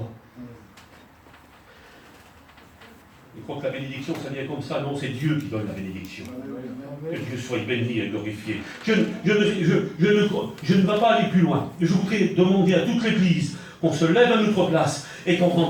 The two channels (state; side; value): identical; both; correlation 1.00